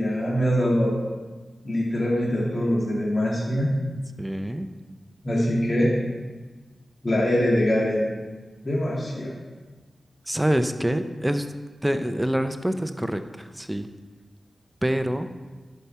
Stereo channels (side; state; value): both; normal; correlation 0.95